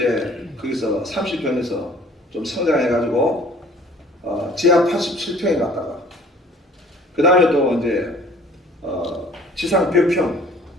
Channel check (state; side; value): normal; both; correlation 0.53